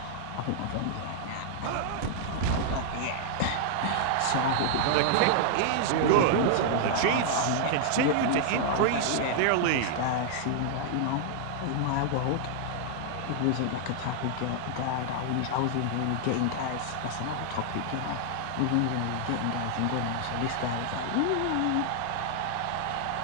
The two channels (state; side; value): different; both; correlation 0.00